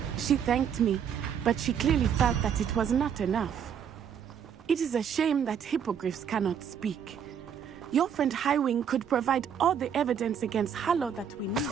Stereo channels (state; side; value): quieter; left; 8.0 dB